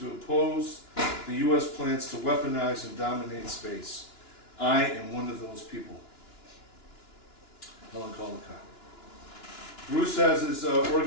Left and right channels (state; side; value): late; right; 2.9 ms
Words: oppose the U.S. plans to weaponize and dominate space. I am one of those people. Helen Caldecott. Bruce has his